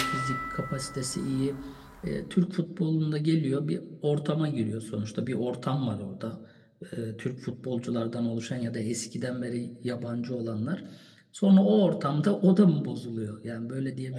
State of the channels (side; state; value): both; identical; correlation 1.00